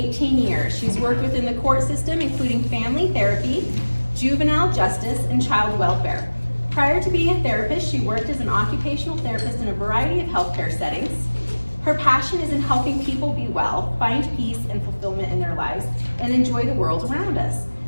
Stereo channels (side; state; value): both; inverted; correlation -1.00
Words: years. She's worked within the court system, including family therapy, juvenile justice, and child welfare. Prior to being a therapist, she worked as an occupational therapist in a variety of healthcare settings. Her passion is in helping people be well, find peace and fulfillment in their lives, and enjoy the world around us.